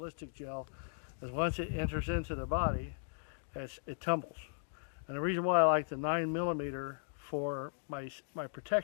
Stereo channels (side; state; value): right; silent; digital silence